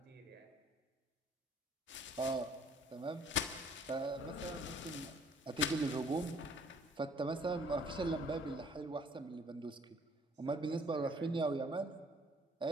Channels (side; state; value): both; normal; correlation 0.59